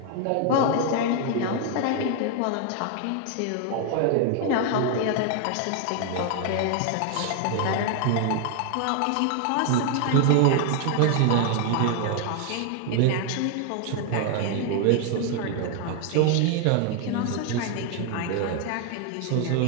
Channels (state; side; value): different; both; correlation 0.00